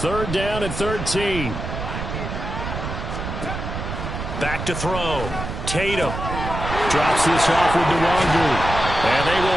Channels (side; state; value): right; noise; rumble, 6 dB below the sound